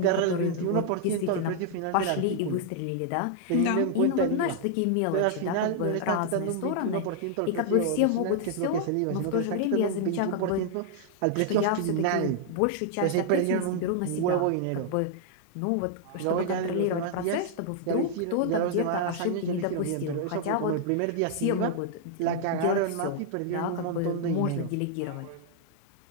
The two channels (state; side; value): different; both; correlation -0.01